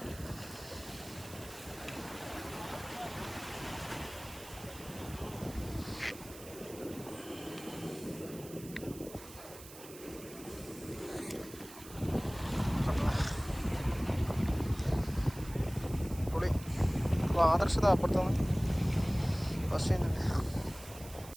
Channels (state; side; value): noise; right; hiss, 16 dB below the sound